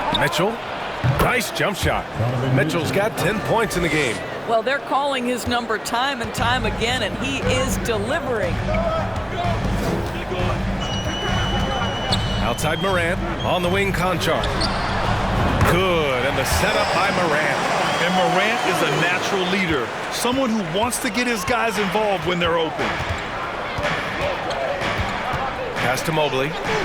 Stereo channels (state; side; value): identical; both; correlation 1.00